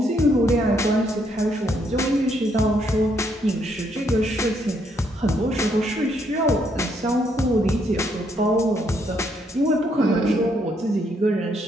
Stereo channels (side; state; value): both; normal; correlation 0.73